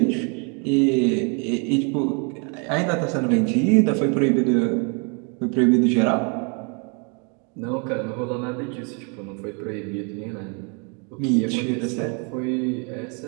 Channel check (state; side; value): quieter; left; 35.7 dB